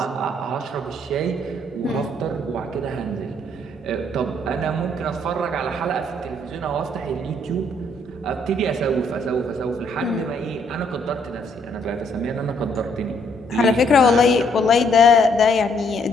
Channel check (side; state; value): both; normal; correlation 0.68